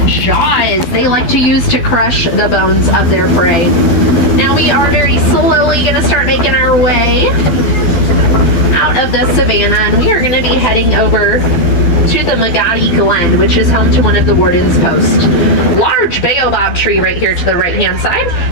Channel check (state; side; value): late; right; 12 ms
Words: jaws they like to use to crush the bones of their prey. Now we are very slowly going to start making our way out of the savannah, and we are going to be heading over to the Magadi Glen, which is home to one of the warden's posts. Large baobab tree right here to the right-hand side.